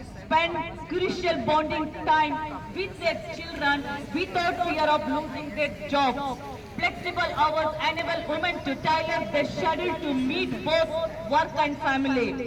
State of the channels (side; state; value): both; identical; correlation 1.00